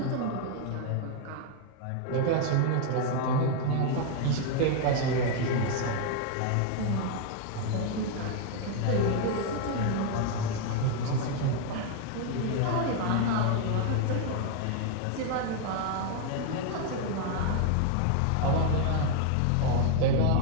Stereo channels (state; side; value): different; both; correlation 0.00